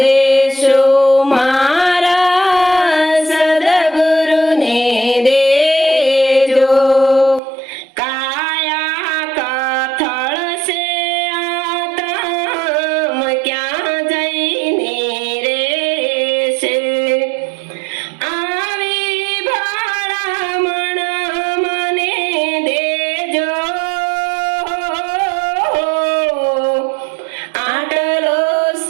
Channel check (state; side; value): drops out; left; at 7.4 s